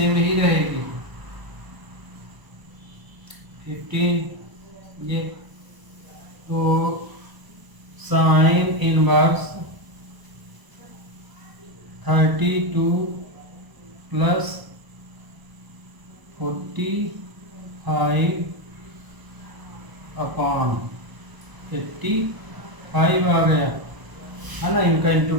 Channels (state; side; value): late; left; 1.0 ms